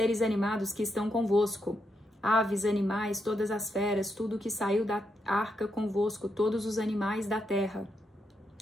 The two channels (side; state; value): both; normal; correlation 0.82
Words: animados que estão convosco, aves, animais, todas as feras, tudo que saiu da arca convosco, todos os animais da terra.